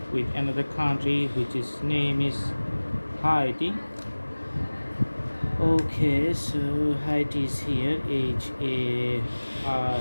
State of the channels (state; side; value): inverted; both; correlation -1.00